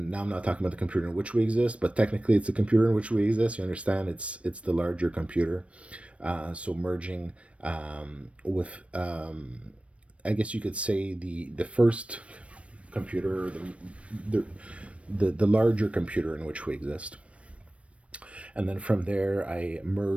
now I'm not talking about the computer in which we exist, but technically it's the computer in which we exist. You understand? It's the larger computer. So merging with, I guess you could say, the first computer, the, the larger computer in which we exist. And then from there, I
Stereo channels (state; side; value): late; left; 0.062 ms